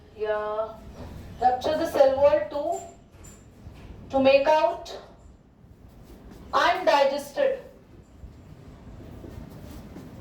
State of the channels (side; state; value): both; identical; correlation 1.00